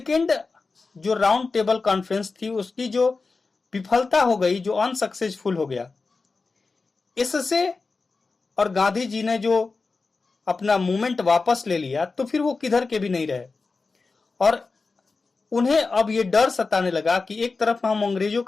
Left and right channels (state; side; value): quieter; right; 4.1 dB